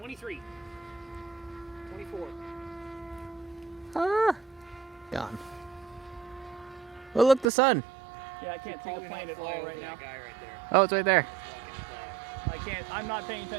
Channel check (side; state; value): left; drops out; at 7.5 s